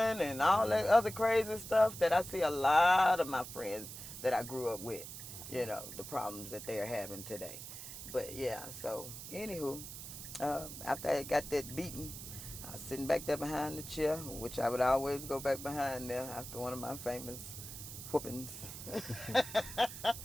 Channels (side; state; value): right; noise; hiss, 10 dB below the sound